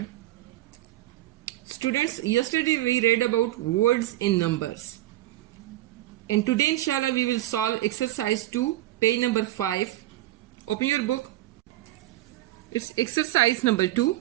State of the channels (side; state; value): left; quieter; 15.8 dB